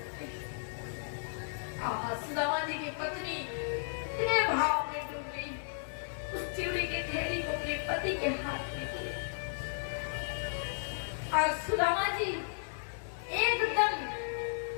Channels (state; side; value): silent; right; digital silence